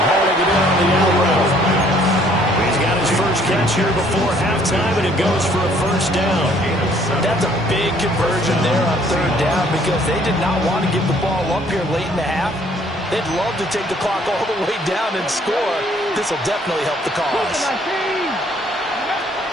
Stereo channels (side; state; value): both; normal; correlation 0.61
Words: hauling it in on the out route. He's got his first catch here before halftime, and it goes for a 1st down. That's a big conversion there on 3rd down because they did not want to give the ball up here late in the half. They'd love to take the clock all the way down and score. This will definitely help the cause.